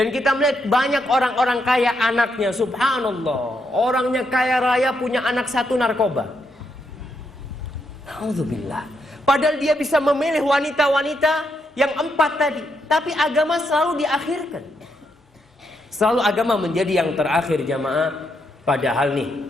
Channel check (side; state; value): both; normal; correlation 0.79